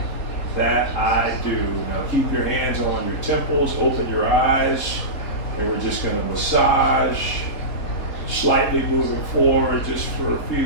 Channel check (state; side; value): late; right; 4.1 ms